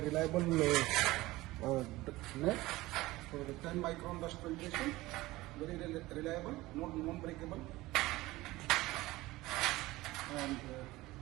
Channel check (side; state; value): left; quieter; 18.9 dB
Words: reliable net for the 10 micron dust filtration, very reliable, non-breakable, and